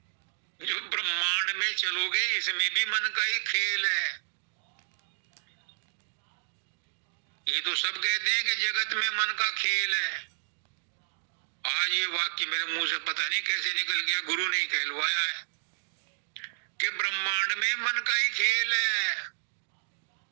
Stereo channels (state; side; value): silent; left; digital silence